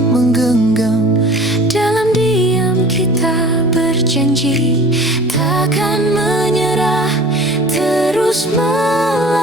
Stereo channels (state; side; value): normal; both; correlation 0.44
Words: menggenggam. Dalam diam kita berjanji takkan menyerah, terus